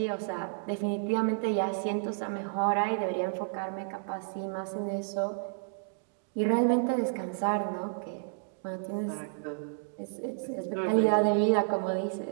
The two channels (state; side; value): silent; left; digital silence